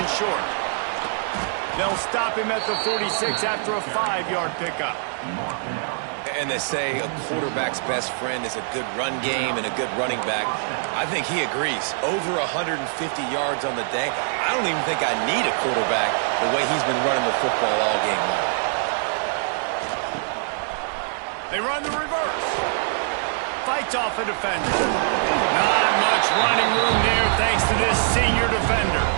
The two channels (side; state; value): left; silent; 63 dB below the other